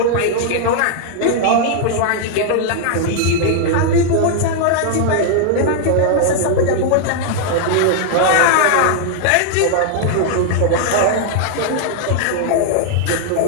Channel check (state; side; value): different; both; correlation 0.00